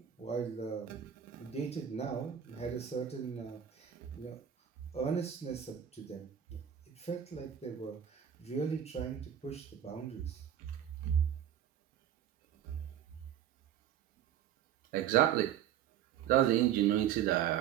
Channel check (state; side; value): quieter; left; 9.9 dB